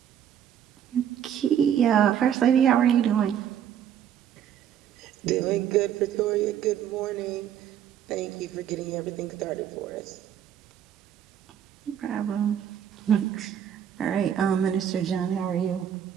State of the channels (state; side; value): quieter; left; 9.5 dB